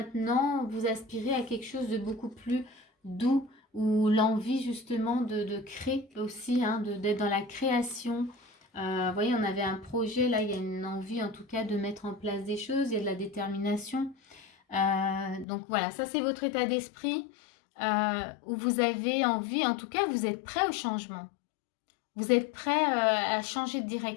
vous aspirez à quelque chose de beaucoup plus doux. Ou l'envie justement de créer aussi, hein, d'être dans la création. Vous voyez, on avait un projet, là, il y a une envie en tout cas de mettre en place des choses, il y a de la détermination. Donc voilà, ça c'est votre état d'esprit où vous avez envie, en tout cas, vous êtes prêt au changement. Vous êtes prêt à changer de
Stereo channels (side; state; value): right; drops out; at 15.5 s